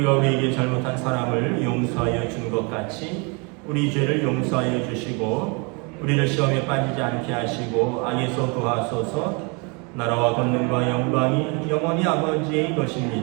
우리에게 잘못한 사람을 용서하여 준 것 같이 우리 죄를 용서하여 주시고 우리를 시험에 빠지지 않게 하시고 악에서 구하소서. 나라와 권능과 영광이 영원히 아버지의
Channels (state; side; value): quieter; left; 31.8 dB